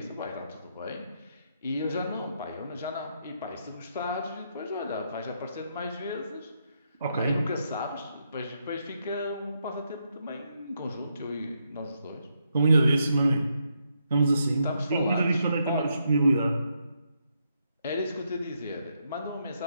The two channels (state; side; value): inverted; both; correlation -0.79